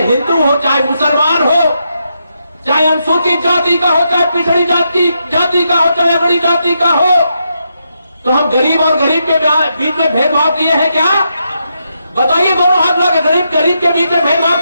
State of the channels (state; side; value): inverted; both; correlation -0.82